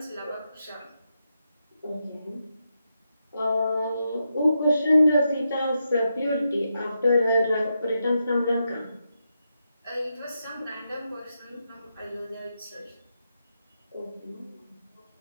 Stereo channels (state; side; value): inverted; both; correlation -0.85